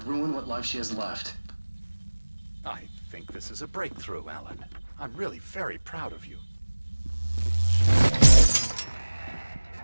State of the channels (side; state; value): both; inverted; correlation -1.00